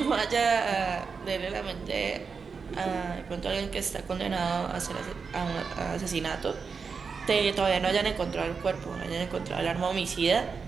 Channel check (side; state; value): left; quieter; 5.4 dB